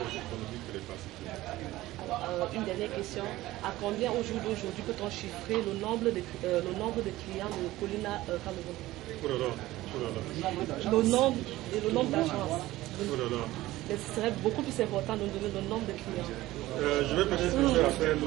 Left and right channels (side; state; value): left; quieter; 16.9 dB